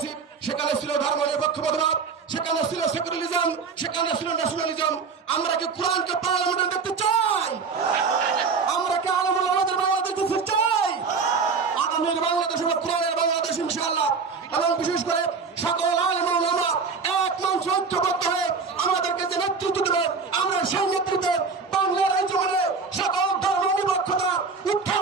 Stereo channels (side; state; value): left; quieter; 5.0 dB